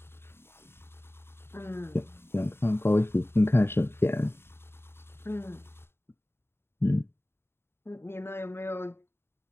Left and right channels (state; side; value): late; right; 0.11 ms